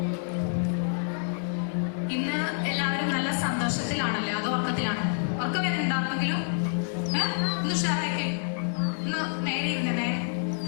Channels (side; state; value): right; silent; digital silence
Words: ഇന്ന് എല്ലാവരും നല്ല സന്തോഷത്തിലാണല്ലേ, അതോ ഉറക്കത്തിലാണ്? ഉറക്കം വരുന്നുണ്ടാണെങ്കിലും ഒന്ന് ഉഷാറാക്കി ഒന്ന് നേരെ ഇരുന്നേ.